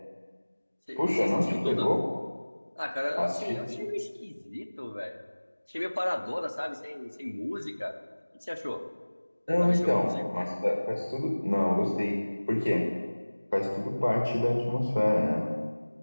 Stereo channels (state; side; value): inverted; both; correlation -1.00